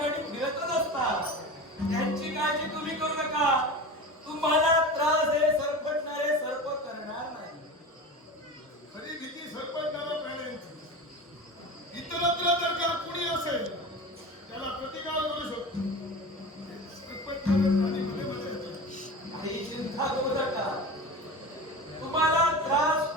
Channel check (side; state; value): both; normal; correlation 0.31